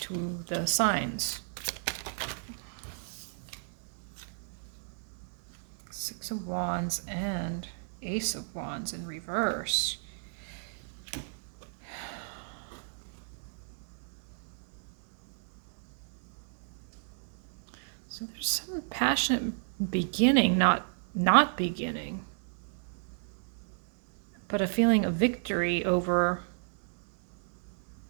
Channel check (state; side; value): silent; left; digital silence